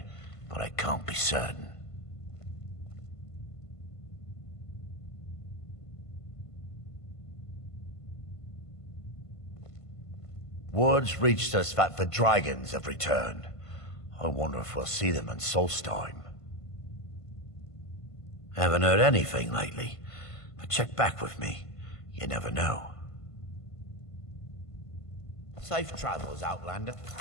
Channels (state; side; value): late; right; 1.5 ms